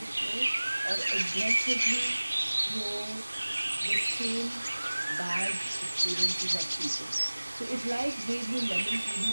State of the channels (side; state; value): both; inverted; correlation -1.00